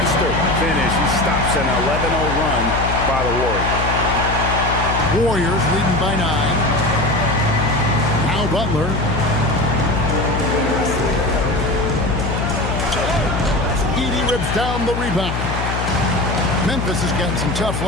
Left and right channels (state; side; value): noise; left; hum, 3 dB below the sound